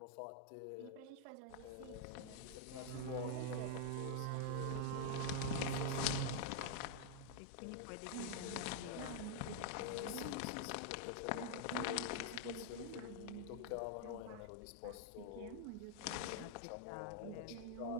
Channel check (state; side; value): different; both; correlation 0.00